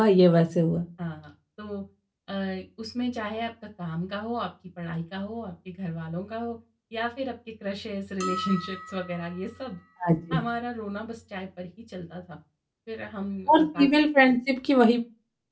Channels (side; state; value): both; identical; correlation 1.00